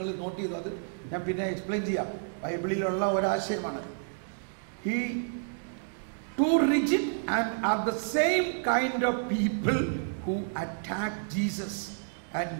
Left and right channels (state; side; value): silent; left; digital silence